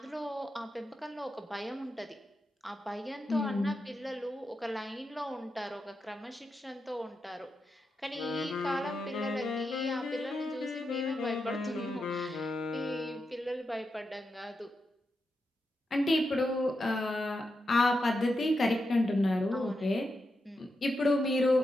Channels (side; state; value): both; normal; correlation 0.87